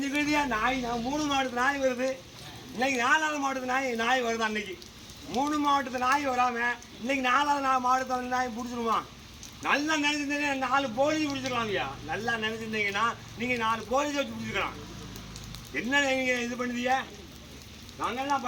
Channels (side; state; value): both; identical; correlation 1.00